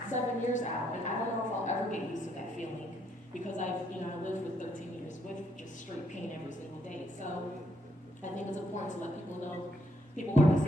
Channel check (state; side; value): normal; both; correlation 0.73